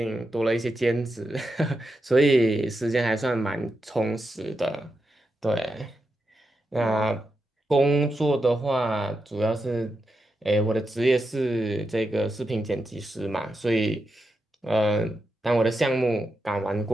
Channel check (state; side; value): normal; both; correlation 0.87